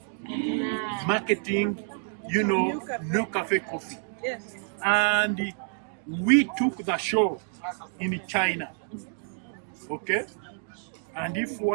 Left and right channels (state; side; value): silent; left; 59 dB below the other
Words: marketing, NUCAFE coffee. Yes. And we took the show in China, okay? And if